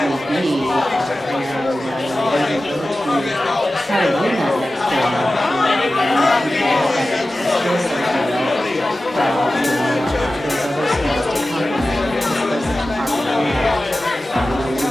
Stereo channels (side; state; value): both; normal; correlation 0.95